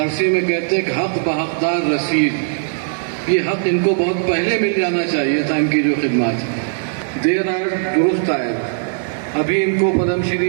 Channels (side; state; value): left; silent; digital silence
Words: میں کہتے ہیں کہ حق بحقدار رسید, یہ حق ان کو بہت پہلے مل جانا چاہیے تھا. ان کی جو خدمات دیر آر درست آئے, ابھی ان کو پدم